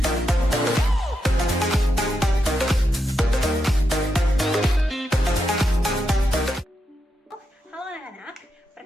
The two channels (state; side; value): normal; both; correlation 0.85